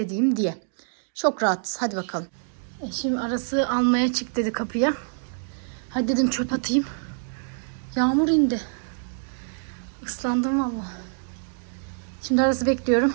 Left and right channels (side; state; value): left; silent; digital silence